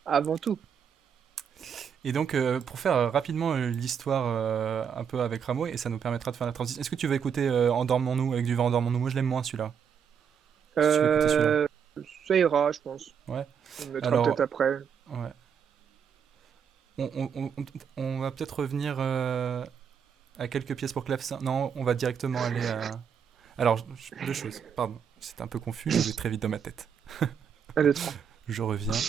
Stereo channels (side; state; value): left; quieter; 7.4 dB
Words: avant tout. Et donc, pour faire rapidement l'histoire un peu avec Rameau, et ça nous permettra de faire la transition. Est-ce que tu veux écouter Endormons-nous avec du vent Endormons-nous? Moi, je l'aime moins celui-là. Si tu veux écouter celui-là. Ça ira, je pense. Ouais. On le mettra Alors, peut-être après. ouais. On va peut-être revenir à quelques pièces pour clavecin. Non, on va directement aller à. Alors, deux choses. Pardon, c'est un peu confus, je vais très vite dans ma tête. 1, 2, 3. Je reviens.